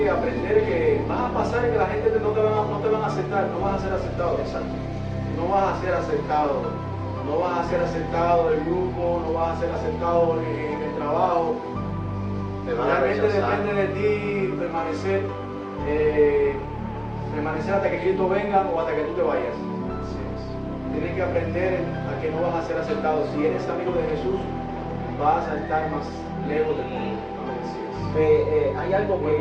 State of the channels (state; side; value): identical; both; correlation 1.00